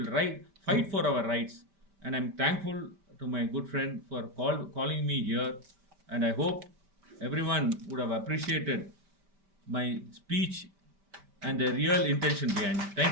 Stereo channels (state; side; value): late; left; 5.1 ms